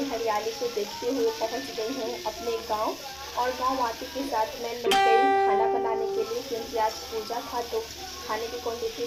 हरियाली को देखते हुए पहुँच गई हूँ अपने गांव। और गांव आते के साथ मैं लग गई खाना बनाने के लिए, क्योंकि आज पूजा था तो खाने की क्वान्टिटी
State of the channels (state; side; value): noise; left; rumble, 26 dB below the sound